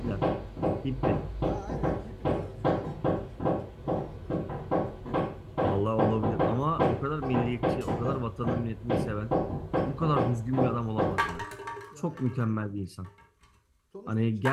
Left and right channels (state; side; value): identical; both; correlation 1.00